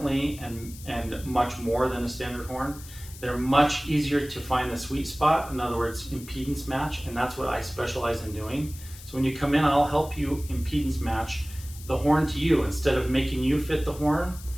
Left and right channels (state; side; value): noise; left; hiss, 17 dB below the sound